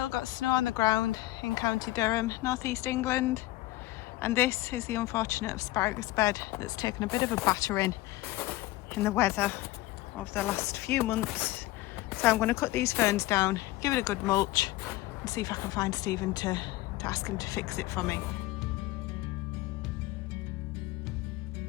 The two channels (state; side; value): quieter; right; 17.6 dB